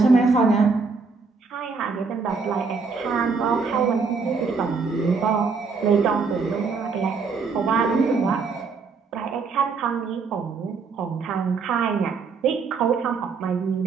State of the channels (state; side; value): quieter; left; 4.8 dB